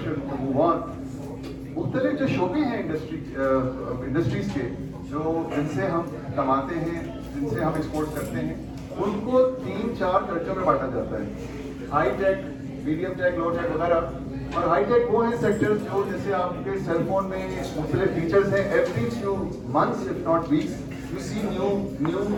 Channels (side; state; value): both; identical; correlation 1.00